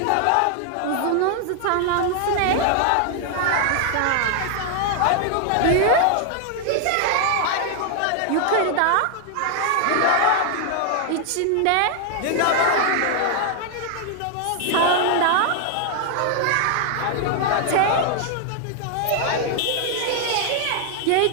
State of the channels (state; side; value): different; both; correlation 0.00